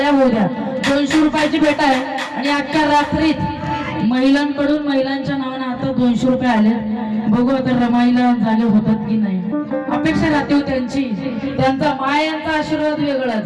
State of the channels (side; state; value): both; identical; correlation 1.00